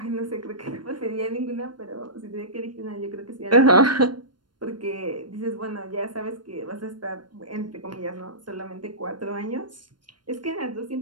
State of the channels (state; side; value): late; left; 0.71 ms